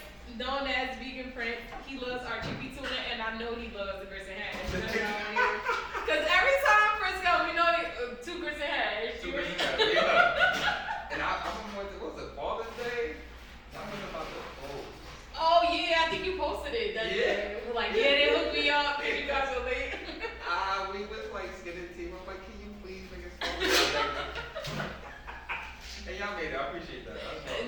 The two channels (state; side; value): identical; both; correlation 1.00